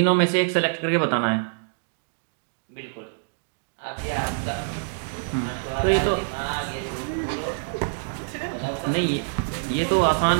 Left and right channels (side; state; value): left; silent; digital silence